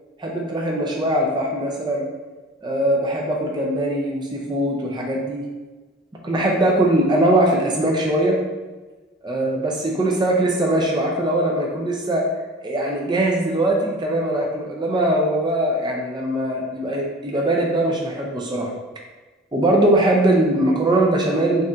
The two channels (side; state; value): both; normal; correlation 0.41